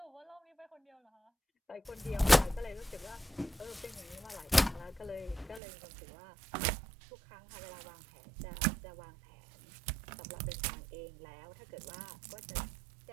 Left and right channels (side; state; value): left; drops out; at 5.6 s